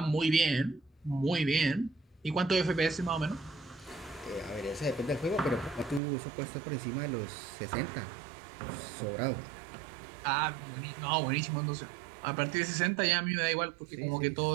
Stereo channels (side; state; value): left; drops out; at 6.0 s